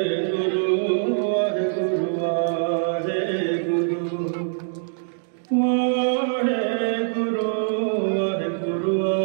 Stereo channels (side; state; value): left; silent; digital silence